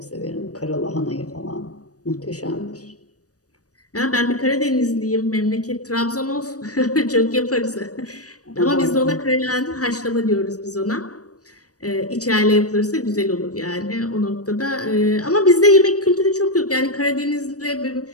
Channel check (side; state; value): right; late; 0.67 ms